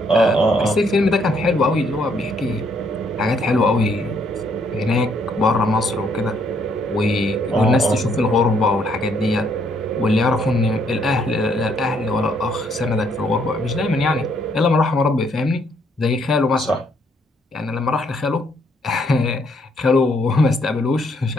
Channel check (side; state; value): both; normal; correlation 0.70